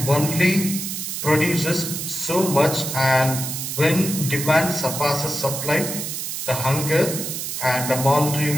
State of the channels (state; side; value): noise; right; hiss, 5 dB below the sound